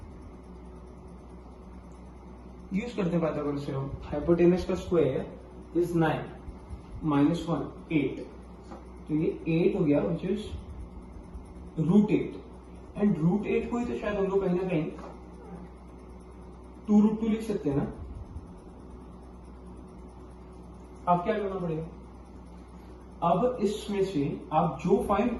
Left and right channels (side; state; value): both; identical; correlation 1.00